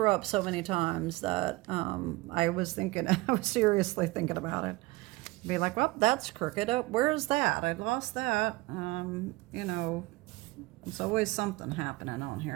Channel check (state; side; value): quieter; left; 21.4 dB